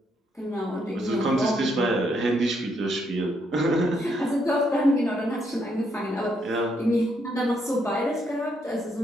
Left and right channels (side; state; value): both; normal; correlation 0.75